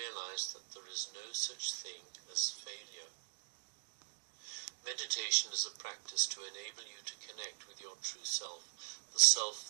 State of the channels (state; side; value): silent; left; digital silence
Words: that there is no such thing as failure. Meditation is a practice to enable you to connect with your true self, the